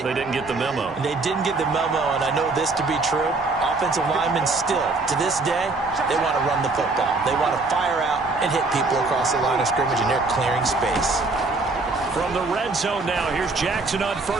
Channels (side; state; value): left; quieter; 3.5 dB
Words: They didn't get the memo. And they didn't get the memo, and I know this to be true. Offensive linemen still, to this day, they want to run the football. They want to fire out and hit people across the line of scrimmage, and they're clearing space. From the red zone now, here's Jackson on